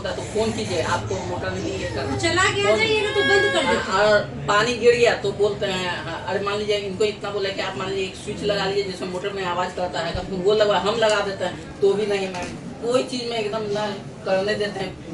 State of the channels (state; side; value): identical; both; correlation 1.00